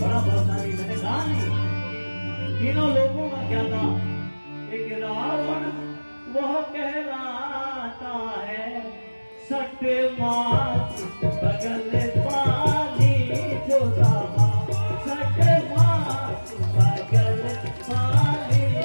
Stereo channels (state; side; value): inverted; both; correlation -1.00